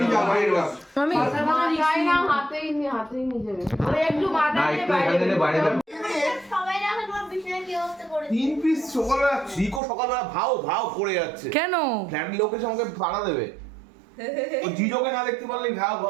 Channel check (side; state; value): left; drops out; at 9.8 s